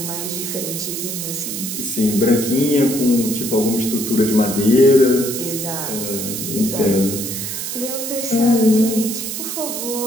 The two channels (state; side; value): noise; right; hiss, 5 dB below the sound